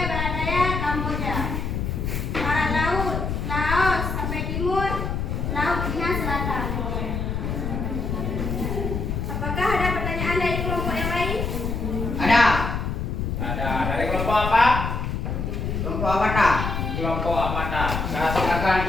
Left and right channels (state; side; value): noise; left; rumble, 2 dB below the sound